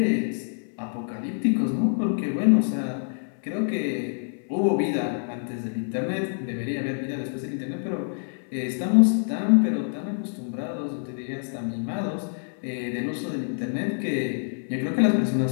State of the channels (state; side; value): silent; right; 61 dB below the other